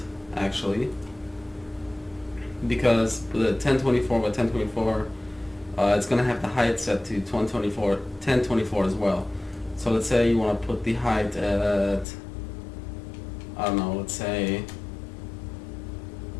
actually, because the 1024 by 1024, it's going to have the height set to 1024 as well. So let's say you want to put the height at, I don't know, let's say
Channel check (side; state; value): right; drops out; at 12.1 s